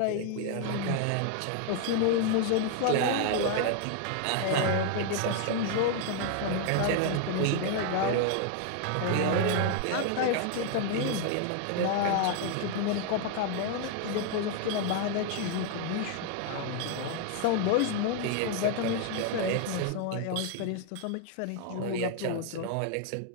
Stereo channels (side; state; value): both; different; correlation 0.00